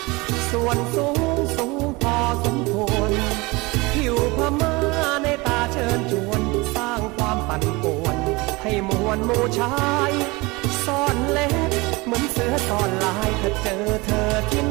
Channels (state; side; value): quieter; left; 24.3 dB